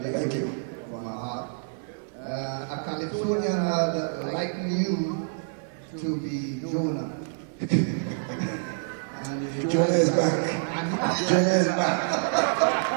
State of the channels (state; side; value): silent; left; 55 dB below the other